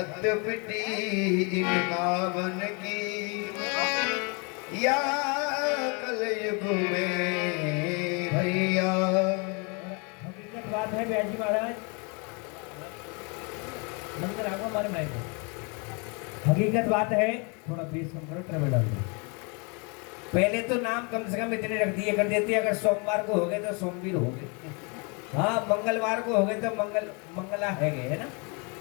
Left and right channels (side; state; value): right; quieter; 32.9 dB